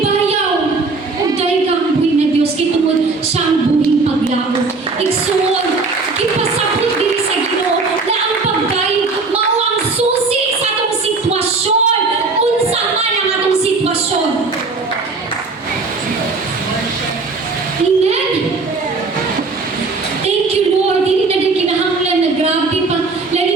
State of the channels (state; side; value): quieter; left; 4.0 dB